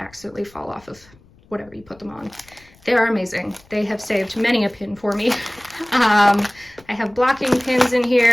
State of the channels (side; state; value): left; noise; rumble, 28 dB below the sound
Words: fall off of whatever you put them on. They are amazing. They have saved many a pin for me. I have blocking pins in